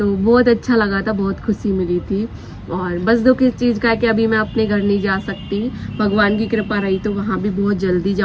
बहुत अच्छा लगा था, बहुत खुशी मिली थी। और बस दुख इस चीज़ का है कि अभी मैं अपने घर नहीं जा सकती। भगवान की कृपा रही तो वहाँ भी बहुत जल्दी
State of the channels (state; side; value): identical; both; correlation 1.00